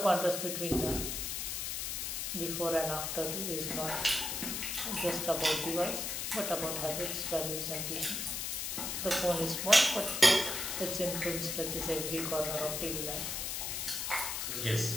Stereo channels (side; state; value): left; noise; hiss, 2 dB below the sound